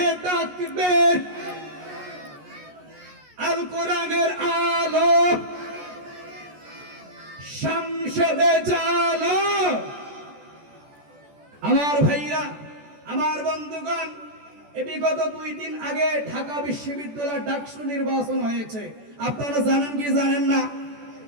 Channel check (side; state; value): left; late; 14 ms